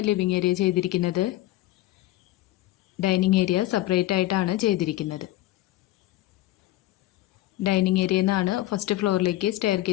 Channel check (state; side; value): quieter; right; 16.0 dB